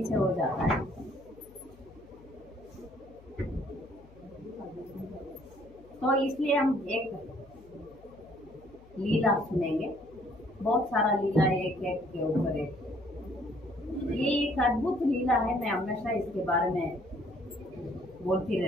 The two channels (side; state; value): left; noise; hum, 24 dB below the sound